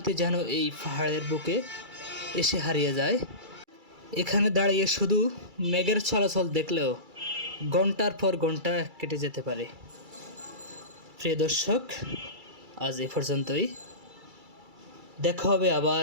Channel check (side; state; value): left; late; 2.3 ms